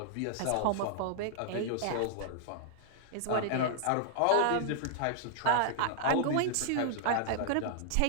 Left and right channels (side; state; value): both; different; correlation -0.01